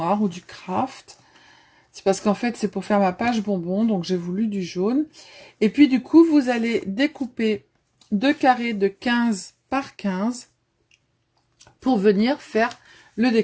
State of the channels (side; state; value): both; identical; correlation 1.00